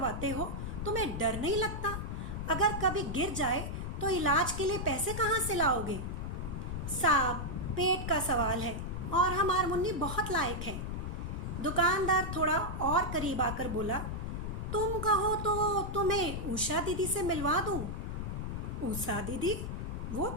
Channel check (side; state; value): left; noise; rumble, 4 dB below the sound